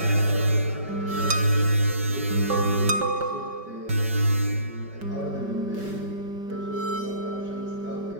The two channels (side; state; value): left; late; 5.2 ms